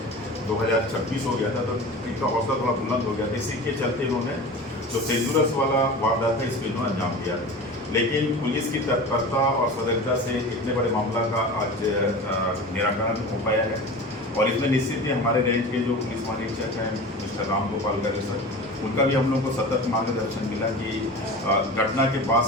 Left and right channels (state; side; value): normal; both; correlation 0.33